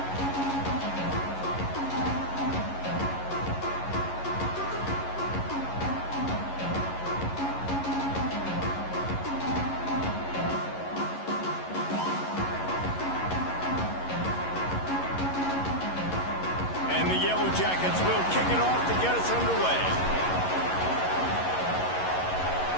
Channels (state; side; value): late; right; 11 ms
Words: And the Yellow Jackets will kick it off to get us underway.